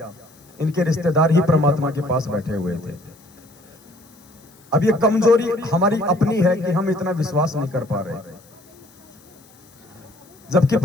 इनके रिश्तेदार ही परमात्मा के पास बैठे हुए थे। अब ये कमजोरी हमारी अपनी है कि हम इतना विश्वास नहीं कर पा रहे, जबकि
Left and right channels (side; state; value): left; noise; hiss, 28 dB below the sound